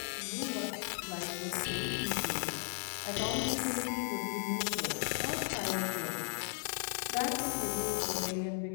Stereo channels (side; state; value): right; silent; 54 dB below the other